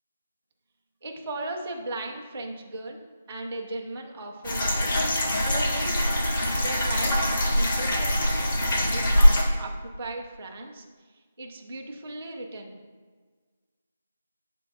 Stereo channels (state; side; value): inverted; both; correlation -0.88